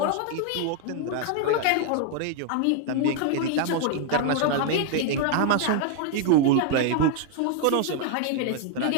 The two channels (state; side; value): different; both; correlation 0.00